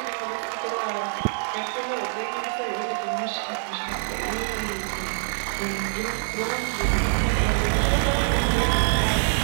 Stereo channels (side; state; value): left; silent; digital silence